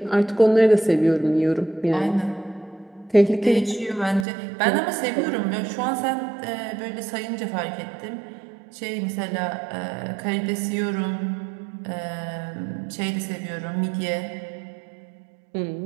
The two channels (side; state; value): left; drops out; at 4.2 s